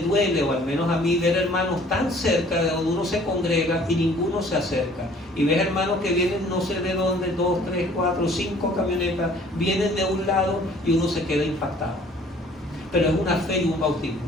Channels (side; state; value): both; normal; correlation 0.54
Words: duele, o al menos a mí, ver hermanos tan cerca de donde uno se congrega y ninguno se acerca. Y ver hermanos que vienen no sé de dónde, 2, 3, 4, 5 camionetas, vienen de un lado y uno se queda impactado. Pero es una fe y un bautismo.